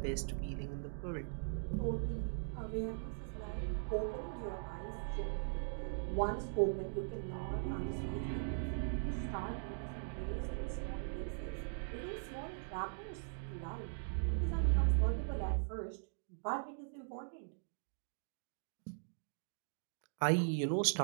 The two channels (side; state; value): left; silent; digital silence